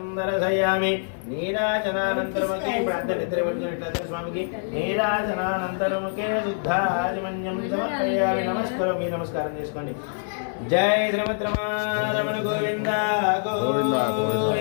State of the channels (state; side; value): silent; right; 62 dB below the other